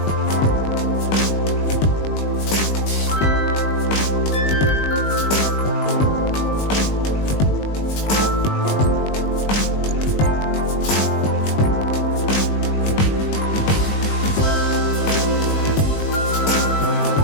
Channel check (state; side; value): late; right; 20 ms